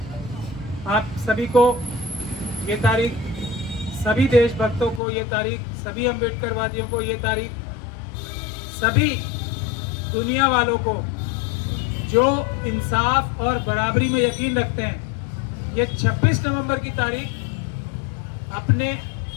आप सभी को ये तारीख, सभी देशभक्तों को ये तारीख, सभी अम्बेडकरवादियों को ये तारीख, सभी दुनिया वालों को जो इंसाफ और बराबरी में यकीन रखते हैं, ये 26 नवंबर की तारीख अपने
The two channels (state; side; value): drops out; right; at 5.0 s